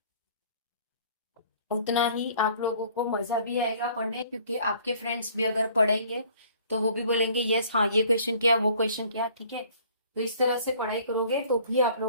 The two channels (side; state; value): both; inverted; correlation -0.55